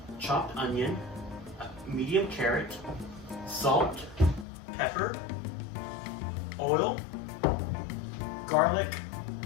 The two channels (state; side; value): drops out; right; at 4.5 s